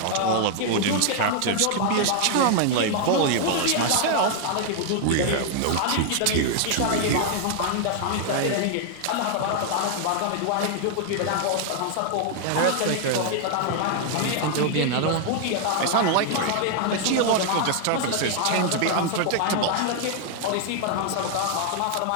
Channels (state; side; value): different; both; correlation 0.00